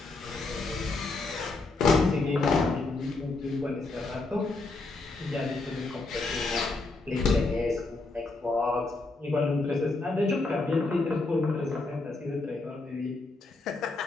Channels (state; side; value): quieter; right; 3.4 dB